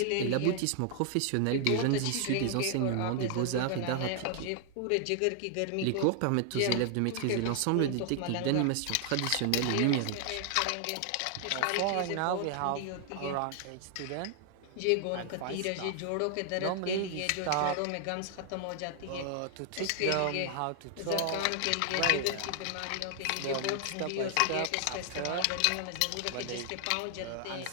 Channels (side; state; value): both; different; correlation 0.00